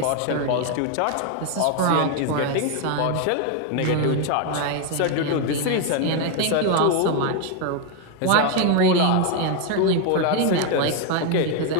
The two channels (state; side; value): different; both; correlation 0.01